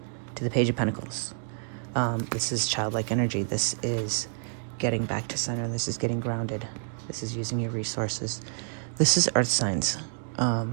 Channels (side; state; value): left; silent; digital silence